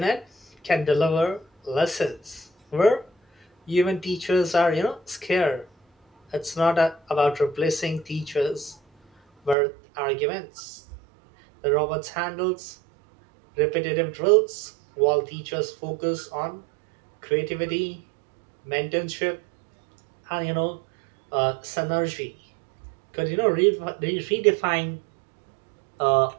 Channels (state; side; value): drops out; left; at 9.6 s